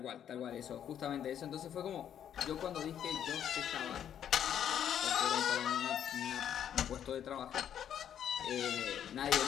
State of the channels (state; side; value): quieter; right; 9.5 dB